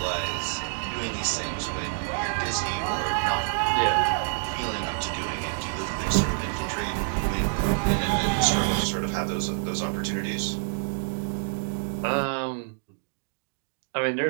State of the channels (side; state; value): left; silent; digital silence